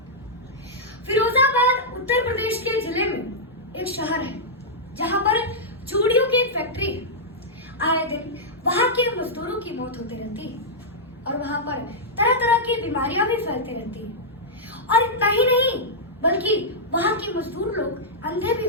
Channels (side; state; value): both; normal; correlation -0.09